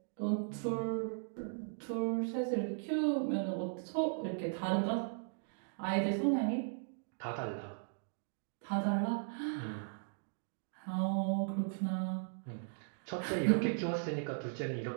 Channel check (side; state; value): left; silent; digital silence